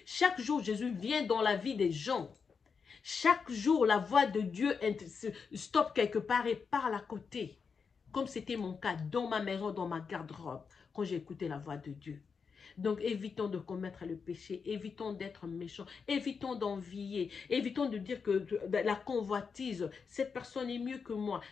chaque jour, Jésus vient dans la vie des gens. Chaque jour, la voix de Dieu stoppe quelque part et parle à côté. Comme c'était mon cas dans ma maison, dans ma garde-robe, quand j'ai écouté la voix de Dieu. Donc, évitons de commettre le péché, évitons d'être méchants, évitons d'envier, évitons de dire que la convoitise, cette personne est mieux que moi,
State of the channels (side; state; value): right; quieter; 5.6 dB